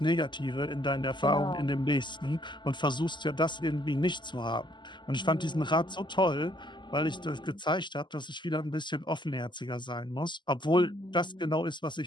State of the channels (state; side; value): late; right; 0.22 ms